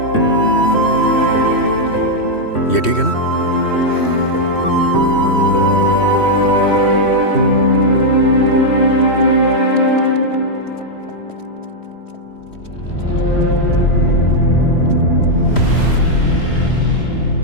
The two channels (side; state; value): right; late; 3.1 ms